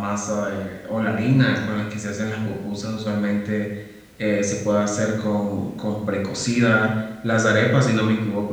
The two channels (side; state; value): both; identical; correlation 1.00